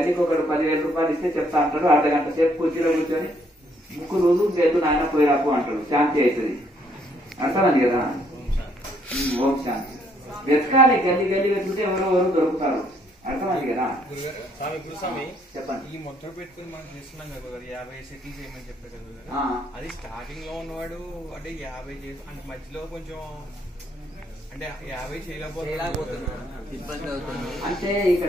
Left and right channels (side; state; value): both; normal; correlation 0.68